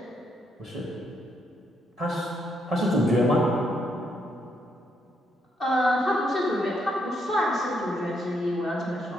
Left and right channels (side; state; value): both; normal; correlation 0.76